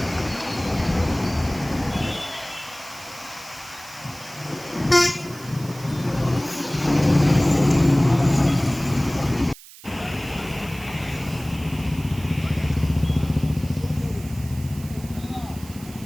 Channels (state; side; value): noise; right; hiss, 19 dB below the sound